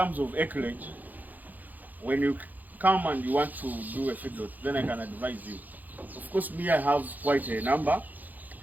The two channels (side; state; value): left; late; 0.083 ms